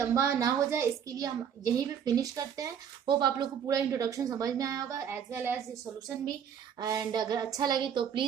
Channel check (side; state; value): left; quieter; 8.2 dB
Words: ना हो जाए, इसके लिए हम यहीं पे फिनिश करते हैं। होप आप लोग को पूरा इंट्रोडक्शन समझ में आया होगा, एज वेल एज सोल्यूशन भी। एंड अगर अच्छा लगे तो